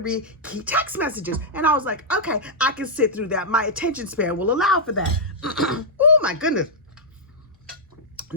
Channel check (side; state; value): both; normal; correlation -0.08